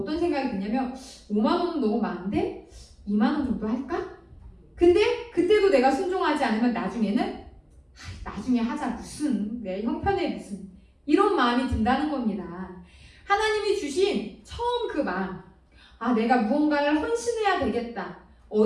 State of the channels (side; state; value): both; identical; correlation 1.00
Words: 생각이 드냐면 5만 원은 너무 많은데 2만 원 정도 할까? 근데 그때도 내가 순종하지 않으면 나중에는 나중에 하자, 무슨 내 형편에 무슨, 이런 마음이 든다는 겁니다. 하나님이 주신 처음 그 마음, 내가 무언가를 헌신해야 되겠다,